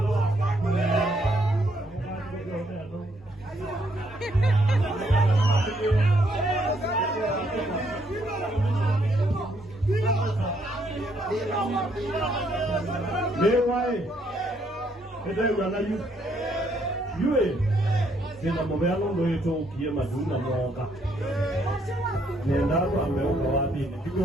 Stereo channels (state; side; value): normal; both; correlation 0.71